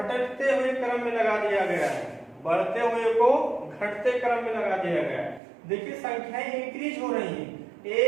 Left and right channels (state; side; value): drops out; left; at 5.4 s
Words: हुए क्रम में लगा दिया गया है, बढ़ते हुए को घटते क्रम में लगा दिया गया है। देखिए संख्याएं इंक्रीज हो रही हैं,